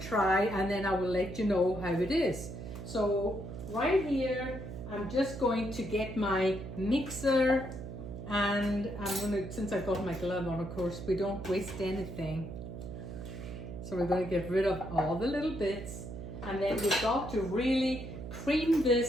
and then I will let you know how it is. So right here, I'm just going to get my mixer, and I'm gonna, since I've got my glove on, of course, we don't waste anything. So we're gonna get rid of all the little bits, and then we've got to really cream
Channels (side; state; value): right; noise; hum, 9 dB below the sound